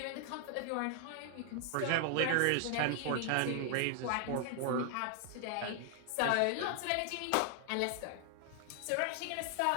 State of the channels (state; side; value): different; both; correlation 0.00